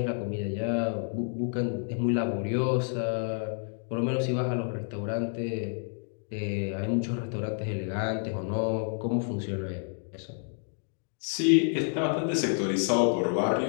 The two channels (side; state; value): right; silent; 55 dB below the other